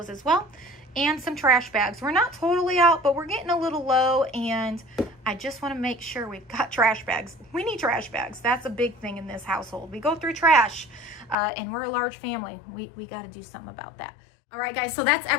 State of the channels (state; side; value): drops out; right; at 11.4 s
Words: as well. And some trash bags. We're not totally out, but we're getting a little low, and I just want to make sure we've got trash bags. We need trash bags. That's a big thing in this household. We go through trash, and we're a large family. We got to do something about that. All right, guys, so that's